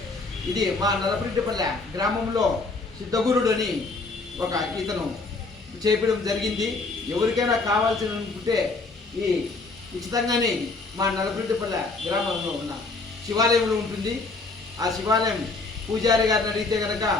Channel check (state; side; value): quieter; right; 3.7 dB